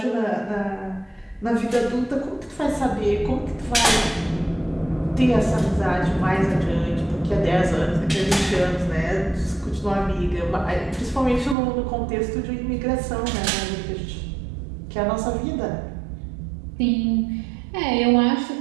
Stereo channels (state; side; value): drops out; left; at 11.6 s